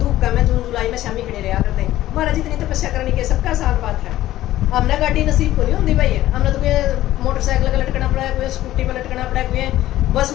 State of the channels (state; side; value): quieter; right; 14.5 dB